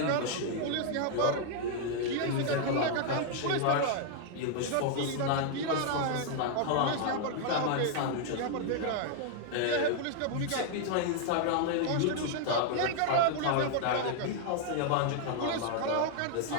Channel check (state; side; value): different; both; correlation 0.00